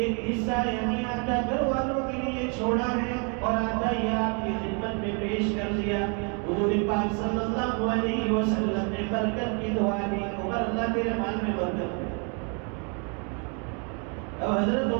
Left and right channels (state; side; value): quieter; left; 36.8 dB